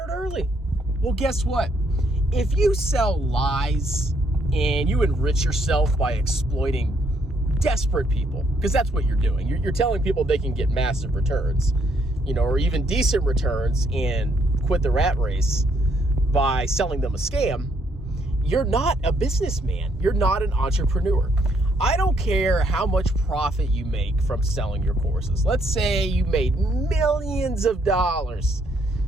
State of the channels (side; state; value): both; normal; correlation 0.71